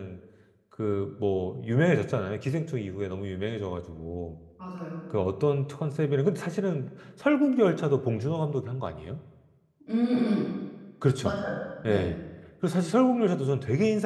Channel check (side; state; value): both; identical; correlation 1.00